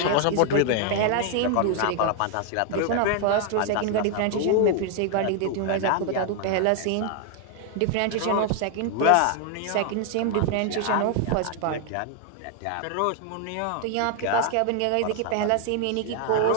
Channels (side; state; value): both; different; correlation 0.00